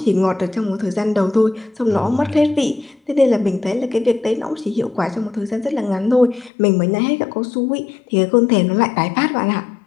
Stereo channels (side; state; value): right; drops out; at 6.5 s